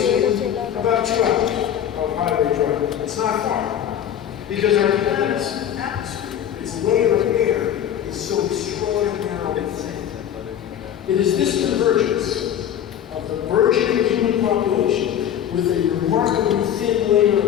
in about 2 hours of highway driving. It's not far, because our planet's atmosphere, its layer of air, is so extraordinarily thin. It is this convergence of the burgeoning human population with a remarkably thin layer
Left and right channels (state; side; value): quieter; right; 10.0 dB